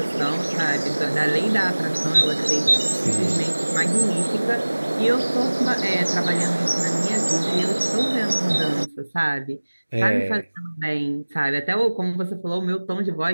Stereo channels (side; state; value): both; inverted; correlation -1.00